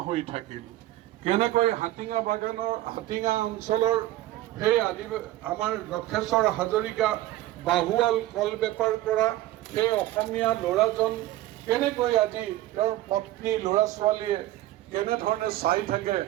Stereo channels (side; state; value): left; quieter; 15.6 dB